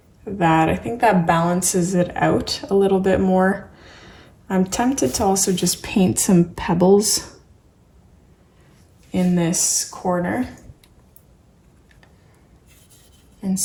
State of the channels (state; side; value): identical; both; correlation 1.00